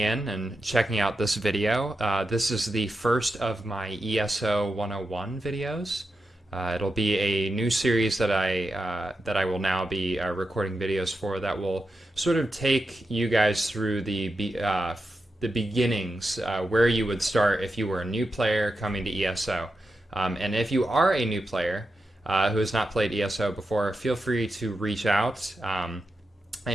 and checking out this video. This is the first of my ESO 101 videos. It'll be a new series that I will now be recording videos for that will sort of take you guys through the beginnings, where you would start if you were a new player coming to ESO. And if you are a new player who has not played ESO before, feel free to reach out. I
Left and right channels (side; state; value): both; normal; correlation 0.89